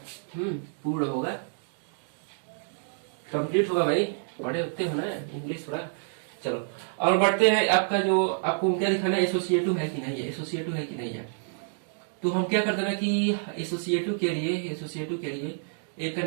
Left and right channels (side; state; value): left; silent; digital silence